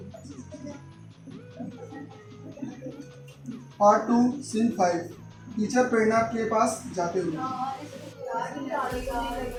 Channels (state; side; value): identical; both; correlation 1.00